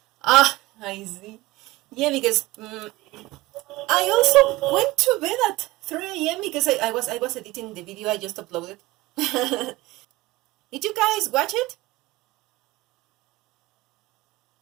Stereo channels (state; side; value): quieter; left; 19.7 dB